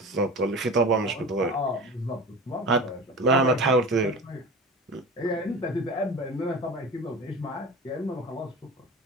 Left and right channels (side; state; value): both; normal; correlation 0.33